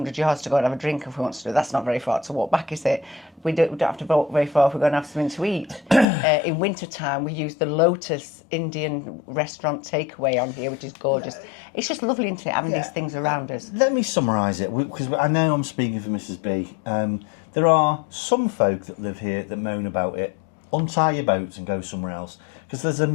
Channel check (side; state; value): right; drops out; at 6.1 s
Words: yards to go and have a drink if we want to do it. That's not very far to walk back, is it? We don't have to walk very far if we're going to have something to eat. In winter time, we use the Lotus Indian restaurant takeaway on here, which is gorgeous. It's just lovely, isn't it, having these things around us? Let me summarise it, because I know I'm speaking for Mrs. B. There are some folk that live here that moan about it. Untie your boats and go somewhere else, because there's a